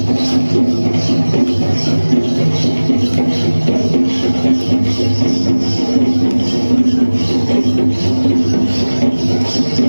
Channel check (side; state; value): both; inverted; correlation -1.00